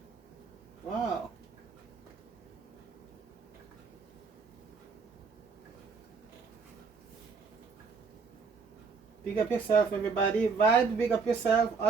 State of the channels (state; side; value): quieter; left; 5.1 dB